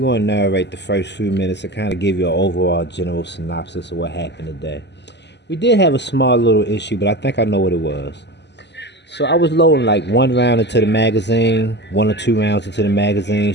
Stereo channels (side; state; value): right; late; 0.50 ms